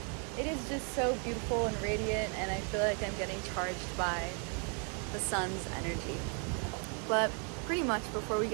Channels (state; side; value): quieter; left; 39.2 dB